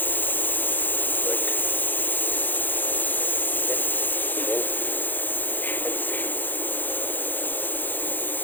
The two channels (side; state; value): right; late; 0.088 ms